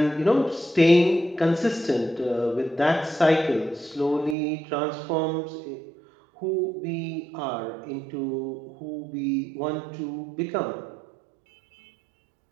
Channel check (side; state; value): left; drops out; at 4.4 s